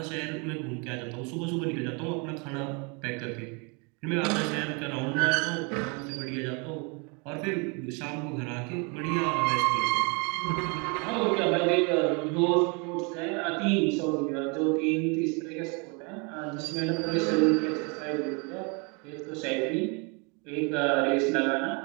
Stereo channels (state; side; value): quieter; left; 32.5 dB